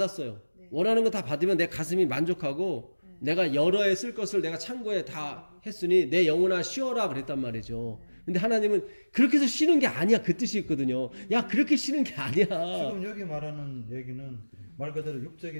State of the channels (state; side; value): inverted; both; correlation -1.00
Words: 네. 원하는 거 다 받으면 내 가슴이 만족하고 내가 여러 해 쓸 것을 내가 창고에 다 했으니 내 영혼아 쉬어라 그랬단 말이죠. 근데 하나님은 그렇게 해서 쉬는 게 아니야. 그 뜻이 있거든요. 야, 그렇게 쉬는 게 아니야. 지금 여기 말하는 얘기는 말 그대로